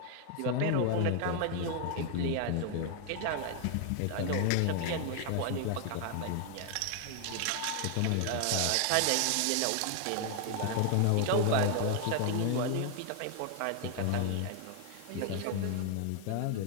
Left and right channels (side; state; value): both; different; correlation 0.00